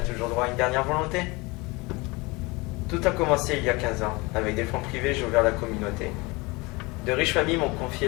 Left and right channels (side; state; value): right; quieter; 24.8 dB